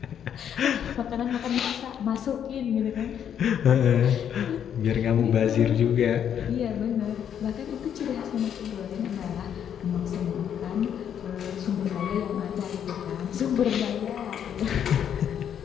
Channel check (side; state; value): right; quieter; 9.0 dB